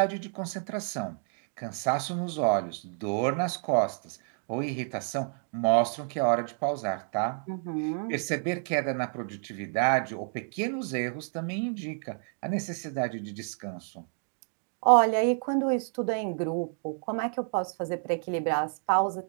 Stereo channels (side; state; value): left; silent; 58 dB below the other